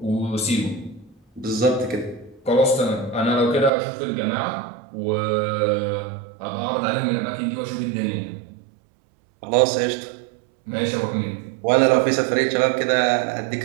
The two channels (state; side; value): drops out; left; at 3.7 s